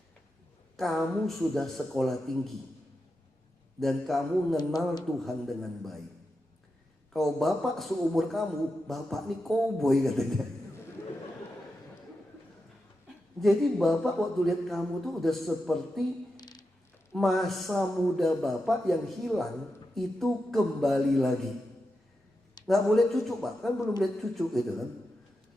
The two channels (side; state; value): both; normal; correlation 0.88